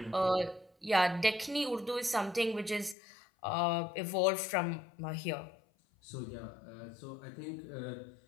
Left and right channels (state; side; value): drops out; right; at 3.0 s